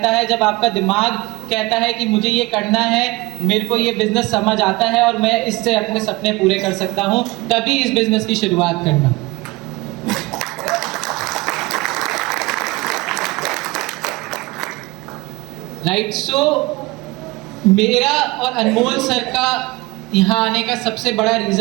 है, जब आपका दिमाग कहता है कि मुझे ये करना है, मेरे को ये बिजनेस समझ आता है और मैं इससे अपने सपने पूरे कर सकता हूँ, तभी इस बिजनेस की शुरुआत करना। राइट, सो मेरा और अनमोल सर का यहाँ आने का सबसे बड़ा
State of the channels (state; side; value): quieter; left; 23.2 dB